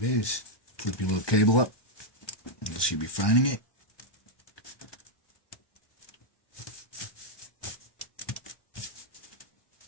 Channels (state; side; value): late; right; 1.2 ms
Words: is. Flip your little cable up. You should be finding it.